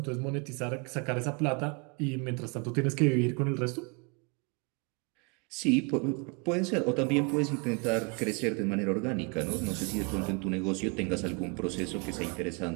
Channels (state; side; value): quieter; left; 32.9 dB